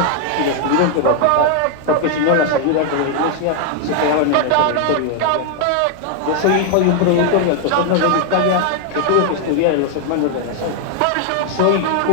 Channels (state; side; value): different; both; correlation 0.00